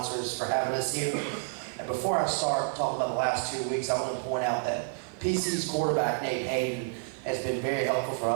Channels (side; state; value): left; silent; digital silence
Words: for having us here. And before I start talking about the last 2 weeks, I want to point out that PC's quarterback, Nate Hayden, has been very helpful for